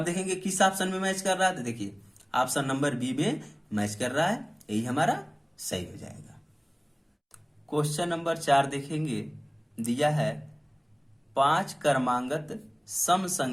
देखेंगे किस ऑप्शन में मैच कर रहा है, तो देखिए ऑप्शन नंबर बी में मैच कर रहा है, यही हमारा सही हो जाएगा। क्वेश्चन नंबर 4 देखेंगे, दिया है 5 क्रमांगत सम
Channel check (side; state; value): both; identical; correlation 1.00